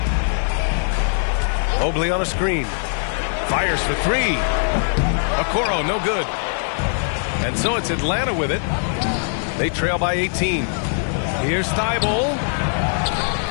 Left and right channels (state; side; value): silent; right; 55 dB below the other